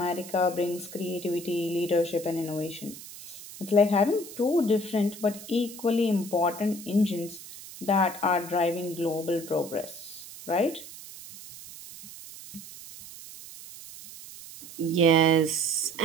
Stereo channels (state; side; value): noise; right; hiss, 15 dB below the sound